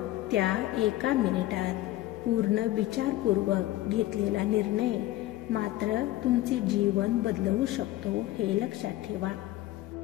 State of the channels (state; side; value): quieter; right; 15.9 dB